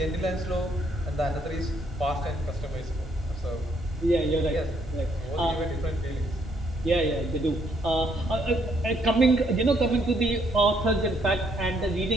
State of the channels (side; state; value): both; normal; correlation 0.70